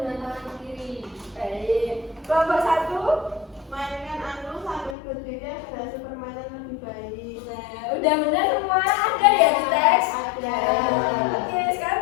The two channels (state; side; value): drops out; right; at 5.0 s